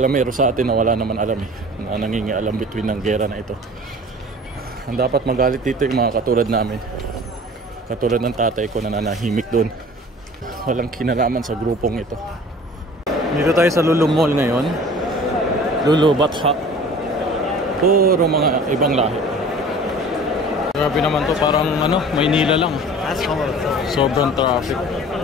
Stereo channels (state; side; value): normal; both; correlation 0.44